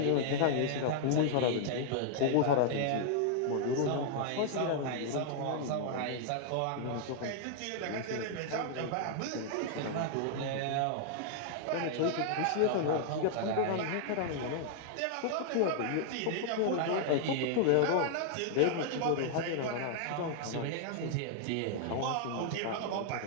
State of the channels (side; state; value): both; different; correlation -0.01